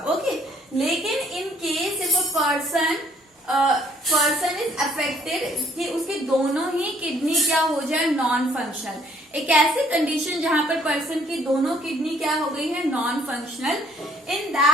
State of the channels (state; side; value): normal; both; correlation 0.63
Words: ओके, लेकिन in case if a person is affected कि उसकी दोनों ही किडनी क्या हो जाए, नॉन फंक्शनल, एक ऐसी कंडीशन जहां पर पर्सन की दोनों किडनी क्या हो गई है, non functional, in